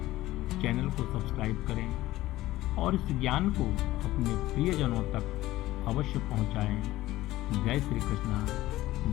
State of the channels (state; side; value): quieter; right; 16.4 dB